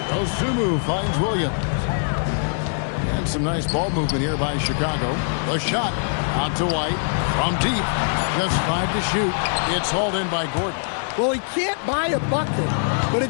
Dosunmu finds Williams. And some nice ball movement here by Chicago. The shot out to White from deep. Just 5 to shoot. It's hauled in by Gordon. Well, he can't buy a bucket, but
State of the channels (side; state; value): right; silent; digital silence